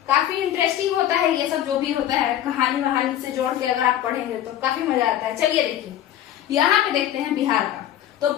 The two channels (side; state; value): right; quieter; 11.6 dB